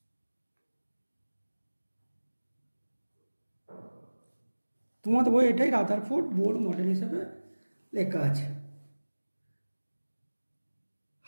তোমাদের বই এটাই রাদারফোর্ড বোর মডেল হিসাবে লেখা আছে।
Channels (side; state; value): both; inverted; correlation -1.00